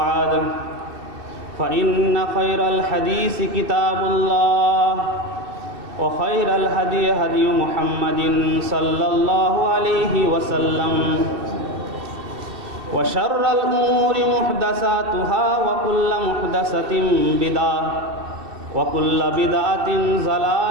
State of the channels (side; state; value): left; late; 2.6 ms